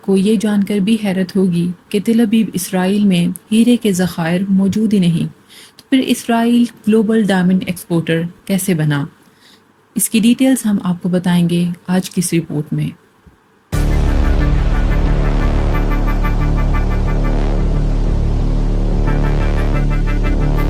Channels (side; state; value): both; identical; correlation 1.00